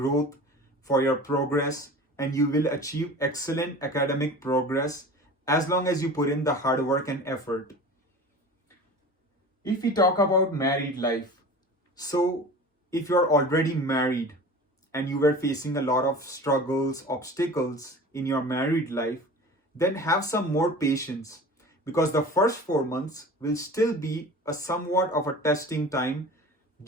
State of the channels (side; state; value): both; normal; correlation 0.38